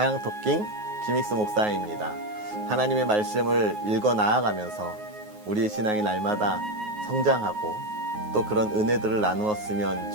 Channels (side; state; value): left; late; 9.5 ms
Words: 김익수 목사입니다. 하나님의 말씀을 읽어 나아가면서 우리의 신앙이 날마다 성장하고 또 그런 은혜들을 나누었으면